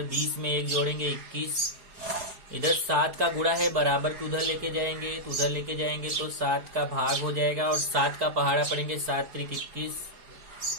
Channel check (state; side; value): late; left; 4.8 ms